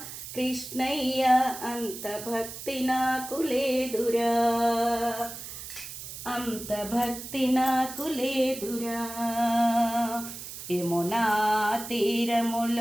కృష్ణయ్య, అంత భక్తి నాకు లేదురా, అంత భక్తి నాకు లేదురా. యమునా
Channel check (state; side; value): noise; right; hiss, 10 dB below the sound